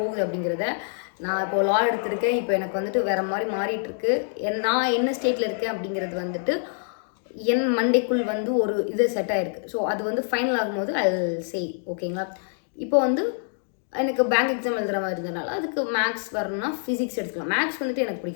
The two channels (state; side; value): silent; right; digital silence